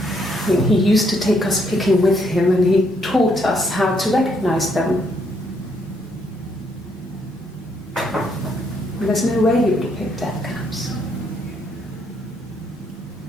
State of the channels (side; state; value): both; normal; correlation 0.72